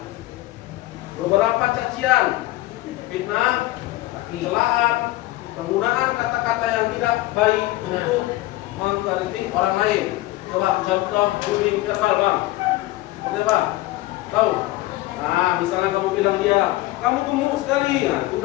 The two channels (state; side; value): quieter; right; 17.9 dB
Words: beberapa cacian, fitnah, celaan, penggunaan kata-kata yang tidak baik untuk mengkritik orang lain. Coba contoh bullying verbal, Bang. Seperti apa? Tahu? Nah, misalnya kamu bilang dia, kamu gemuk sekali, nah itu